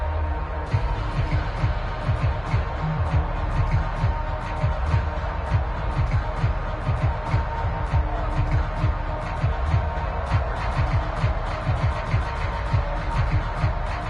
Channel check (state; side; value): identical; both; correlation 1.00